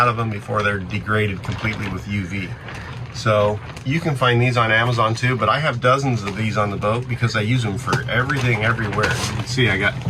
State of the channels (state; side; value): identical; both; correlation 1.00